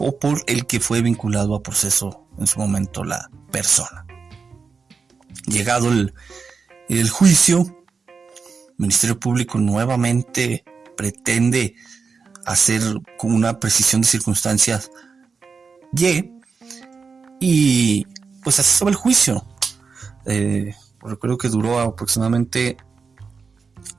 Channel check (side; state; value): left; quieter; 5.1 dB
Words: por el que fue vinculado a proceso en su momento la persona. Llegado el juicio, el Ministerio Público nuevamente pretende hacer con una precisión de circunstancias y pues así estaba el juicio. Recuerdo que duró aproximadamente